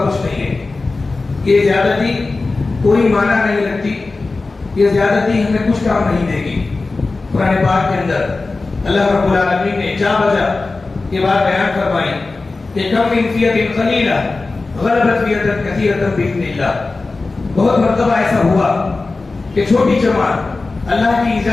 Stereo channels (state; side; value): quieter; right; 3.6 dB